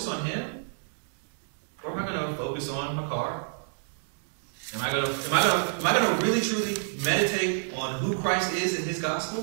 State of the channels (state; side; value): silent; left; digital silence